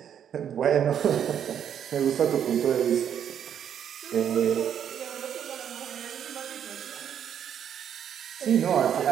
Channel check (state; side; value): quieter; left; 9.0 dB